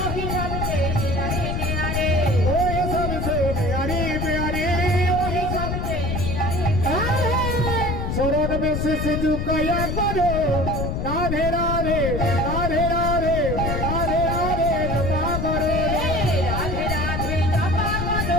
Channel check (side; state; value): left; noise; rumble, 2 dB below the sound